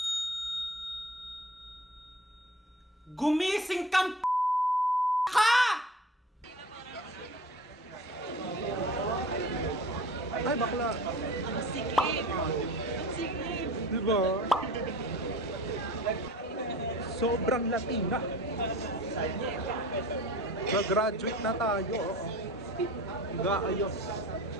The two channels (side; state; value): both; normal; correlation 0.39